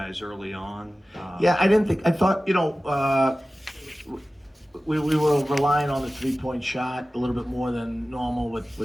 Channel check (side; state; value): both; normal; correlation 0.96